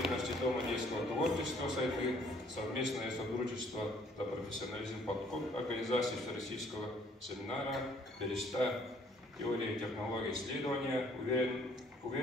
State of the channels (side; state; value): both; normal; correlation 0.61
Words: Дома детского творчества «Сайды» совместное сотрудничество за профессионализм подход организации Всероссийского семинара «Береста. Теория и технологии исследования».